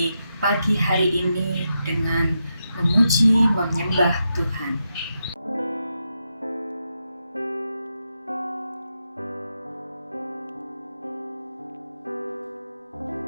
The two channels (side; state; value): both; inverted; correlation -0.85